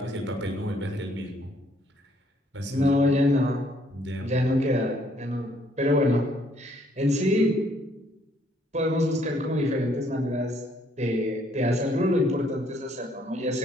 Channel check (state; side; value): normal; both; correlation 0.66